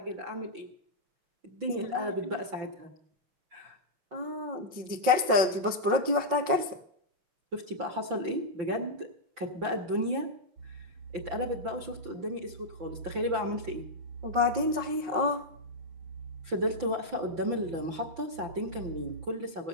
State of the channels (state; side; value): late; left; 5.6 ms